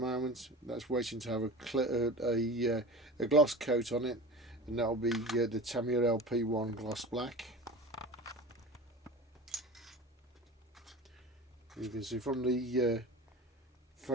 That's waiting to have a gloss coat on it, and that'll be the Tamiya LP1 gloss black. You can see from the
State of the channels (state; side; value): normal; both; correlation 0.33